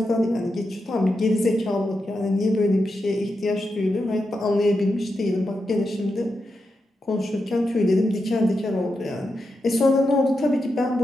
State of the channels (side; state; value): both; normal; correlation 0.87